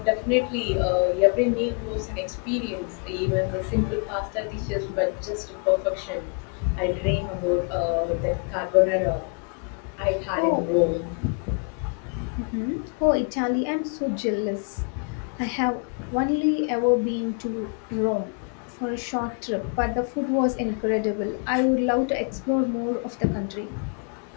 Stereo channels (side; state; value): right; quieter; 39.0 dB